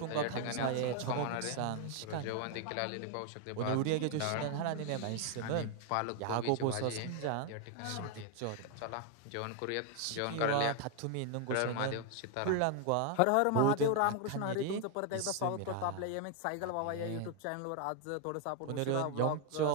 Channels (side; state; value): both; different; correlation 0.00